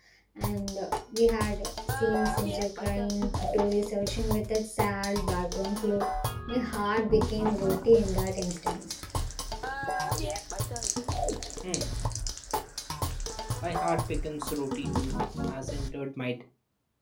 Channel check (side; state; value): both; identical; correlation 1.00